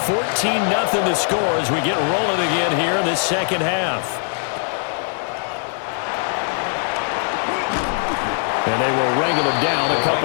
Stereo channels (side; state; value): right; silent; 55 dB below the other